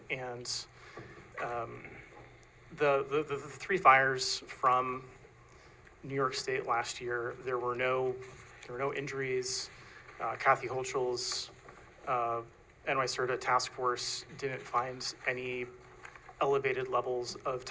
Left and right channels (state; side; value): identical; both; correlation 1.00